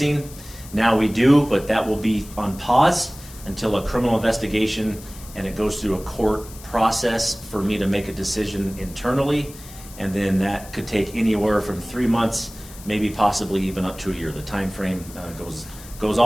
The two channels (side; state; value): left; noise; hiss, 18 dB below the sound